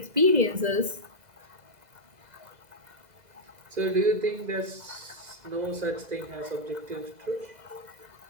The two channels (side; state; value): left; late; 2.0 ms